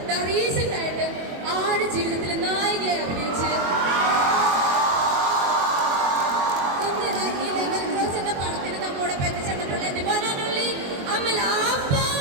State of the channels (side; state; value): left; late; 22 ms